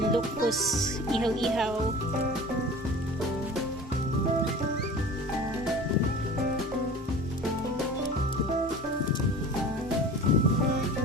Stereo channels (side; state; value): both; normal; correlation 0.39